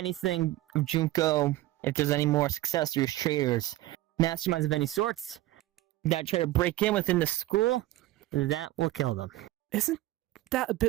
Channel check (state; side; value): quieter; left; 16.5 dB